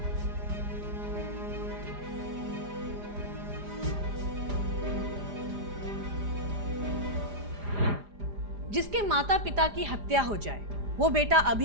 जिसके माता पिता की हत्या हो जाए वो बेटा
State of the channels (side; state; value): left; late; 4.9 ms